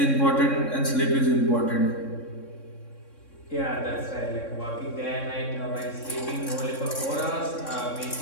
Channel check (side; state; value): right; late; 3.6 ms